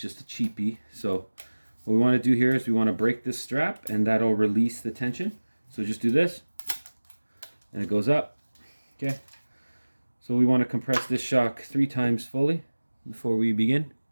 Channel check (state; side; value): inverted; both; correlation -1.00